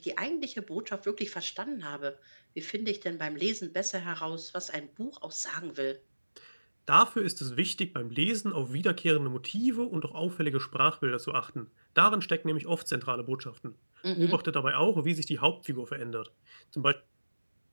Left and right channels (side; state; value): both; inverted; correlation -1.00